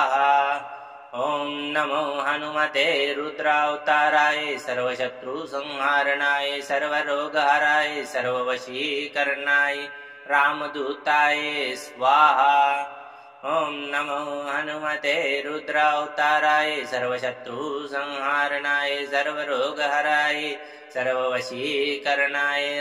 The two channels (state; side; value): identical; both; correlation 1.00